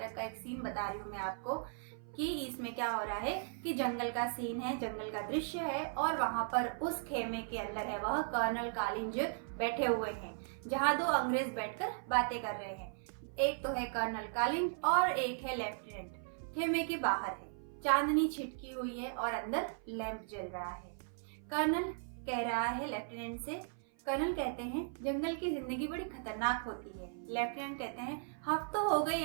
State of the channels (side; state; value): left; silent; 53 dB below the other